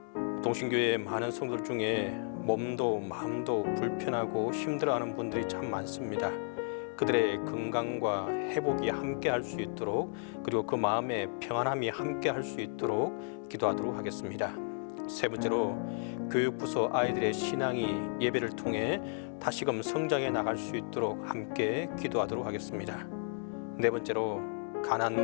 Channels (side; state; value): right; silent; 56 dB below the other